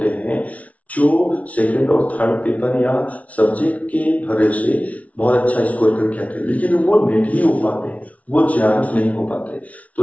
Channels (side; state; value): right; late; 0.067 ms